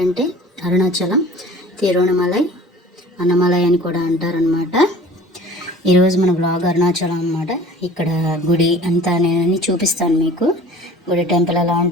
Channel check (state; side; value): normal; both; correlation 0.46